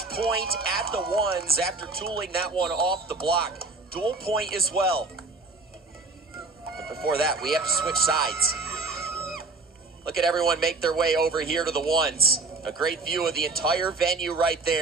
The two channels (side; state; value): left; quieter; 3.7 dB